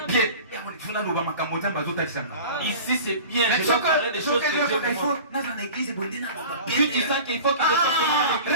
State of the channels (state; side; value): inverted; both; correlation -0.39